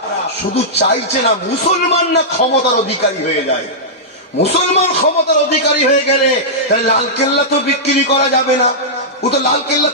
শুধু চাইছে না মুসলমান না ক্ষমতার অধিকারী হয়ে যায়। মুসলমান ক্ষমতার অধিকারী হয়ে গেলে তাহলে লালকেল্লা তো বিক্রি করা যাবে না, ও তো লালকেল্লা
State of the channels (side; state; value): both; normal; correlation -0.12